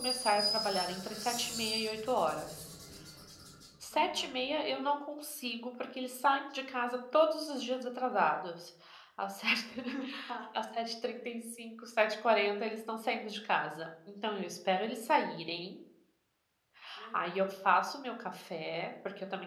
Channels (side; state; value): both; identical; correlation 1.00